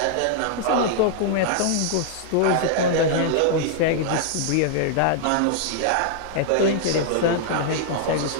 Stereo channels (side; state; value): both; different; correlation -0.01